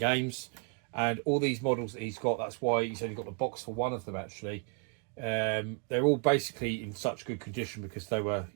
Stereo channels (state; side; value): quieter; left; 37.5 dB